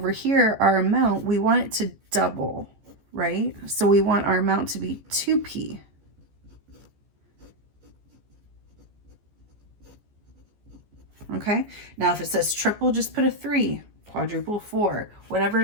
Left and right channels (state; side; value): late; left; 14 ms